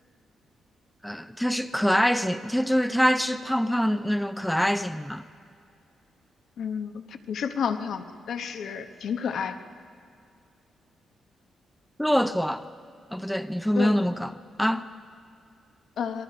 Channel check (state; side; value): normal; both; correlation 0.96